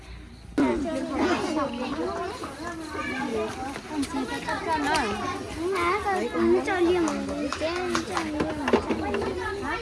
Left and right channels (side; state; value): both; identical; correlation 1.00